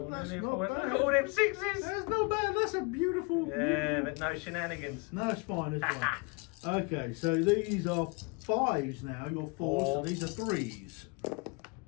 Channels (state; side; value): quieter; right; 30.3 dB